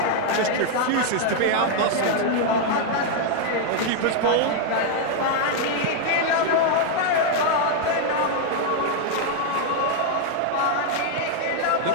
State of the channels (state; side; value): different; both; correlation 0.00